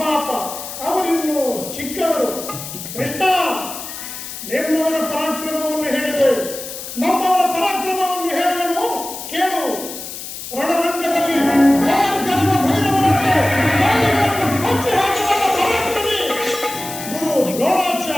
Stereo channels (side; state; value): left; noise; hiss, 10 dB below the sound